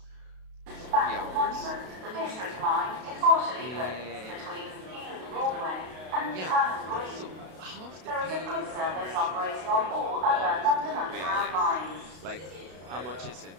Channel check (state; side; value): late; left; 32 ms